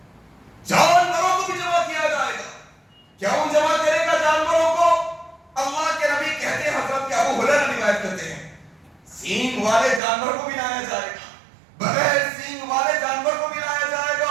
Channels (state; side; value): drops out; left; at 10.0 s